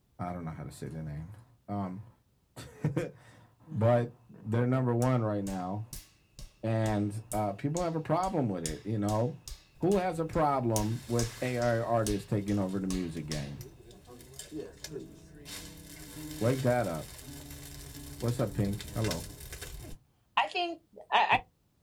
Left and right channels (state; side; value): identical; both; correlation 1.00